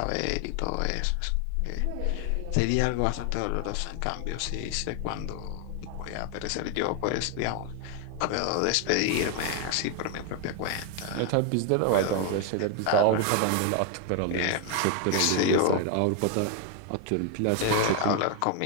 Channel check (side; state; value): both; different; correlation 0.00